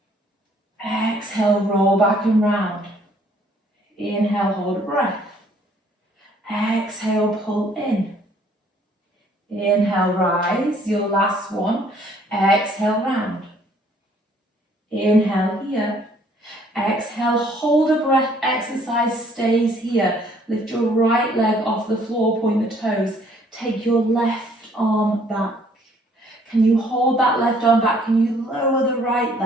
Exhale, roll back and round. Inhale, hold a breath. Exhale, pull in. Inhale, rise. Your last one. Exhale, round. Inhale here. Exhale, hold a breath. Exercise stays here. Lift your right leg off the floor, point the toes. Take your left arm back. Can you hold that left arm back? Can you lower the right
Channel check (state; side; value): normal; both; correlation 0.61